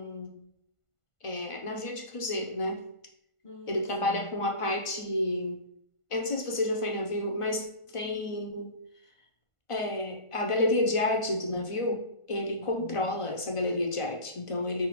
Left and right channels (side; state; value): right; late; 1.5 ms